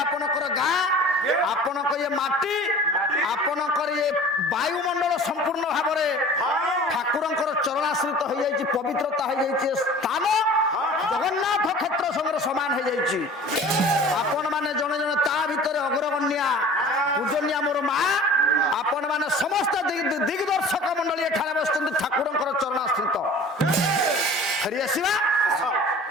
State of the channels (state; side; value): normal; both; correlation 0.43